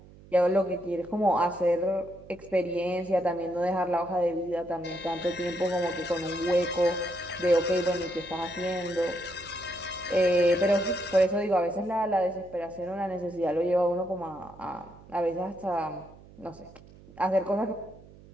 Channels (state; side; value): noise; right; hum, 22 dB below the sound